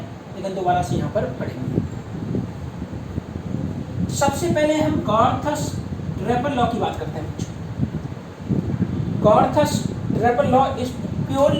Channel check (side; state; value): both; identical; correlation 1.00